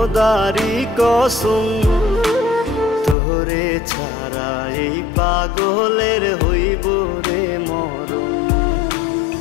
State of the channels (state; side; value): drops out; right; at 3.2 s